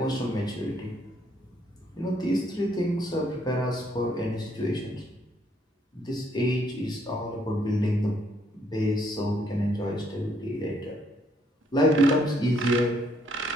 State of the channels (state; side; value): normal; both; correlation 0.69